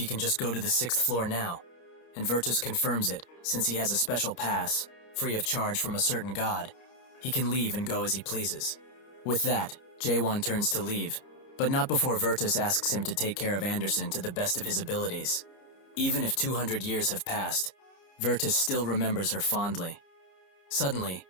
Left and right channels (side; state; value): right; late; 29 ms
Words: can just go to the 6th floor now, and Virtus confirms it, since he has a special pass, free of charge from a certain god. He can leave and go as he pleases. With that, Jae-won turns to leave, but not before Virtus asks him to take care of Anderson to the best of his abilities. Even if 200 years have passed, Virtus still remembers her fondly. Suddenly,